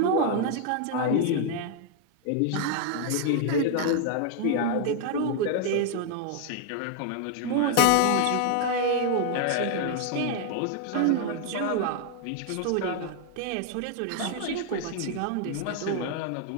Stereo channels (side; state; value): both; different; correlation 0.00